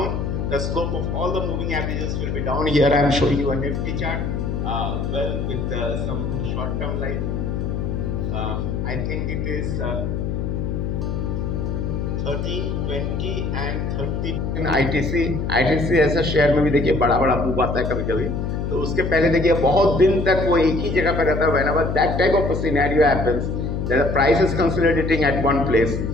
the slope of all the moving averages will be down. Here I am showing you a Nifty chart, with some short-term line. I think it is 13, 20 and 30 in ITC ऐसा share में भी देखिए बड़ा move आता है कभी कभी, तो उसके पहले देखिए बहुत दिन तक वो एक ही जगह पे रहता है. Whenever that type of a scenario happens, that the price is consolidating at one place,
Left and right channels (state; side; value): noise; left; hum, 2 dB below the sound